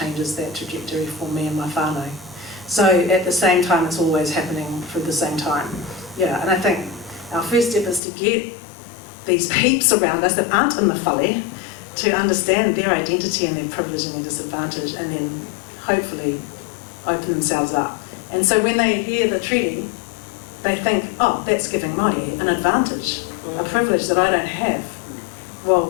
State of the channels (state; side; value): drops out; right; at 8.0 s